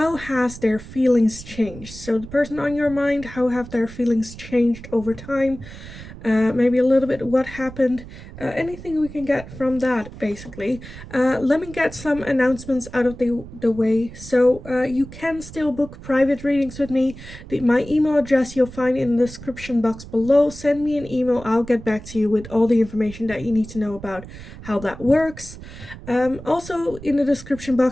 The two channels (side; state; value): right; noise; rumble, 15 dB below the sound